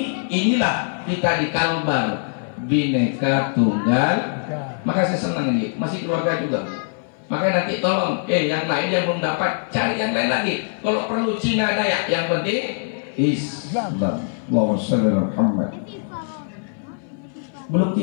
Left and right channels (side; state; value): right; silent; 60 dB below the other